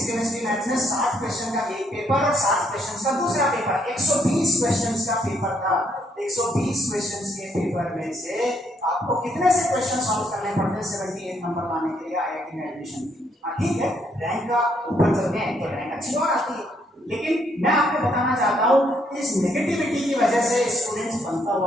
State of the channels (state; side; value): normal; both; correlation 0.72